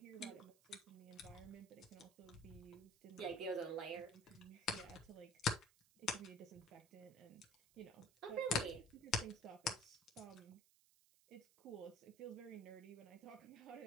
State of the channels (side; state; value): right; noise; hiss, 27 dB below the sound